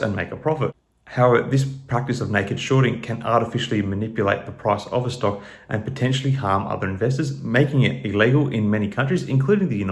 and make a profit. However, this practice of naked shorting can artificially manipulate the price of a stock and potentially harm other investors, making it illegal in many countries, including the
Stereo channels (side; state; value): both; identical; correlation 1.00